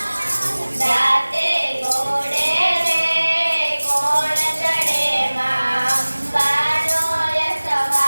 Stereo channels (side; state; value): both; inverted; correlation -1.00